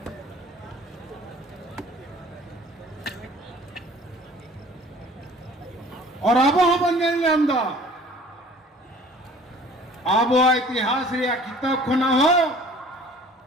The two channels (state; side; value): normal; both; correlation 0.50